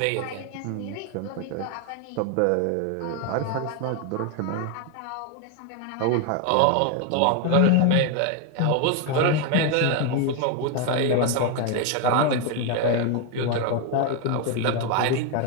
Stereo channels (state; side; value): different; both; correlation 0.01